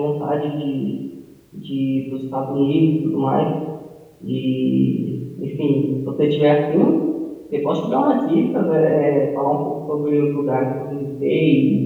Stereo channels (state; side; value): identical; both; correlation 1.00